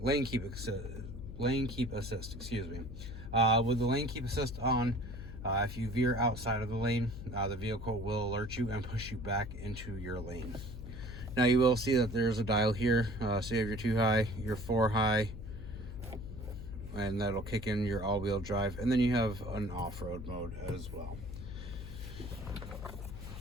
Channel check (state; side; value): noise; left; hum, 10 dB below the sound